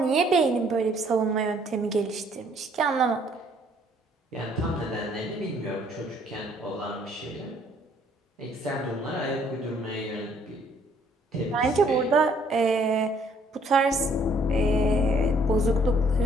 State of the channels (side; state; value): both; normal; correlation 0.63